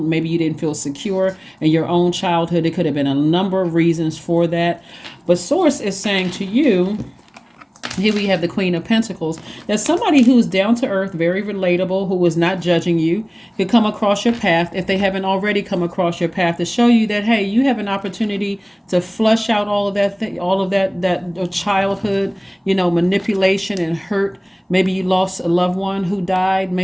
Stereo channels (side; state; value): both; identical; correlation 1.00